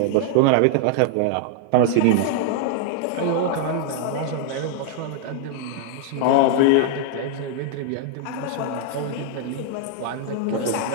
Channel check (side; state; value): both; different; correlation -0.01